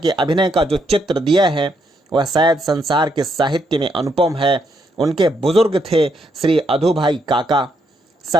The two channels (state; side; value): normal; both; correlation 0.76